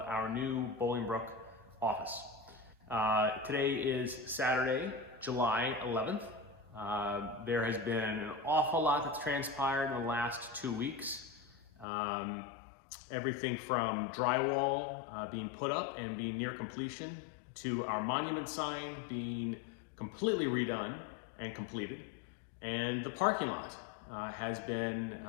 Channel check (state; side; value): drops out; right; at 11.9 s